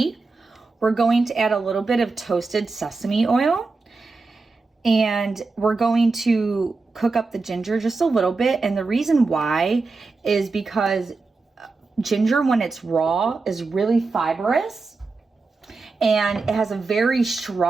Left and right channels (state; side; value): quieter; left; 4.0 dB